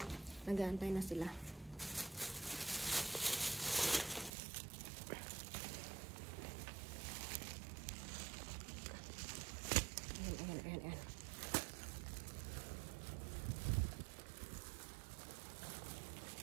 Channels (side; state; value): left; drops out; at 4.3 s